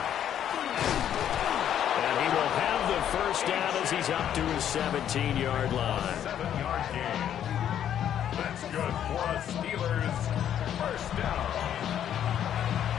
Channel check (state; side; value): quieter; right; 10.0 dB